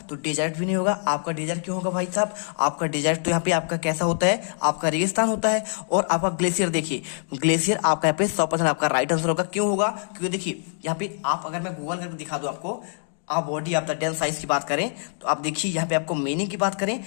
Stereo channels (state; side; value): silent; right; 62 dB below the other